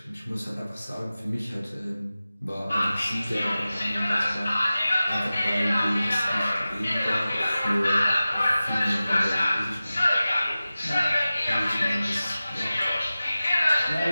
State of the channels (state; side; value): inverted; both; correlation -0.95